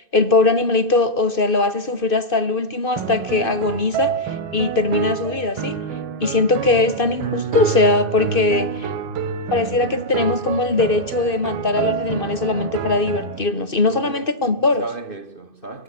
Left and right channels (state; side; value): late; right; 2.6 ms